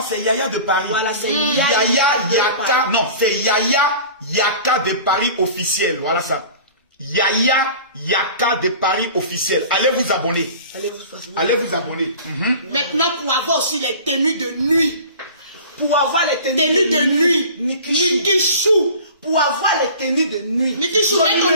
c'est Yaya de Paris. Voilà, c'est Yaka. Non, c'est Yaka de Paris officiel. Voilà ça. Yaka de Paris officiel. Allez vous abonner. Allez vous abonner. Maintenant, pour avoir aussi les tenues de nuit. Pour avoir les tenues de nuit. Nikishu. Pour avoir les tenues de nuit. Nikishu, mets ton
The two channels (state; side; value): inverted; both; correlation -0.41